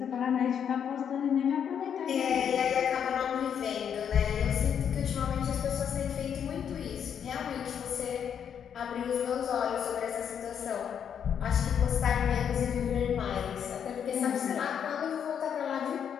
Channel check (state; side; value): quieter; right; 8.2 dB